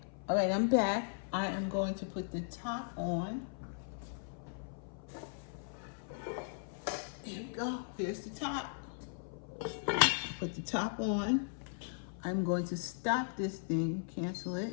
all right, I'm back. I am going to put the top on. Here we go, here's the top. Put the top on. I'm going to stop this thing, cancel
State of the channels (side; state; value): right; silent; 53 dB below the other